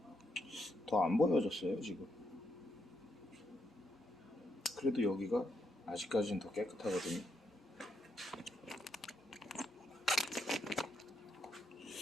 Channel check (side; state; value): both; normal; correlation 0.78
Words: 더 안 보여졌어요 지금. 그래도 여기가 아직까지는 더 깨끗하거든요.